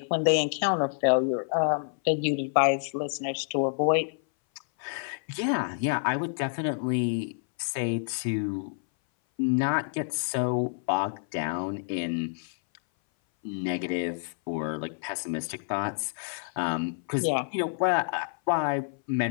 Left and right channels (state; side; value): silent; right; 57 dB below the other